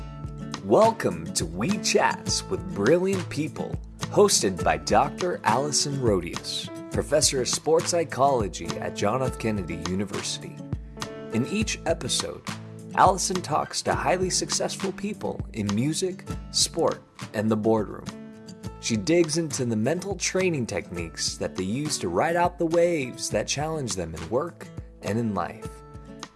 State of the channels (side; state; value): both; identical; correlation 1.00